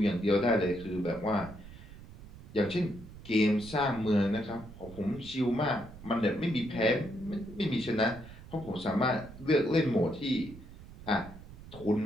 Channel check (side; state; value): right; noise; rumble, 16 dB below the sound